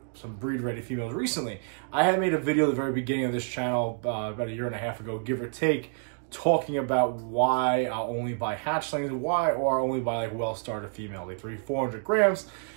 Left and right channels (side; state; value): left; silent; 59 dB below the other